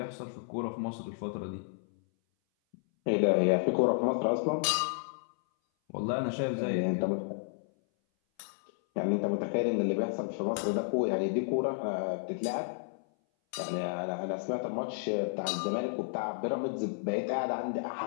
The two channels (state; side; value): silent; right; 57 dB below the other